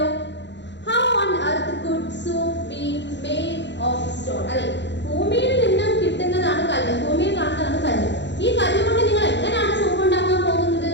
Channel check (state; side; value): late; right; 0.52 ms